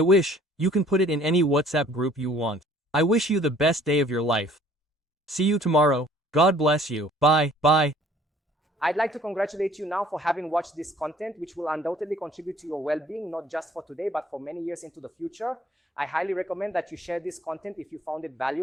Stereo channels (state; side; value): normal; both; correlation 0.56